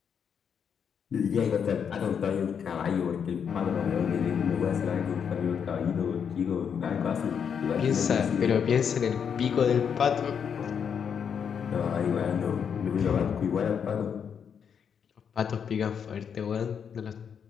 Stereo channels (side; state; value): right; quieter; 7.3 dB